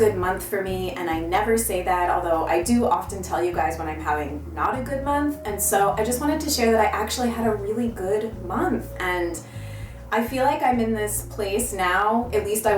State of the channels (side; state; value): both; identical; correlation 1.00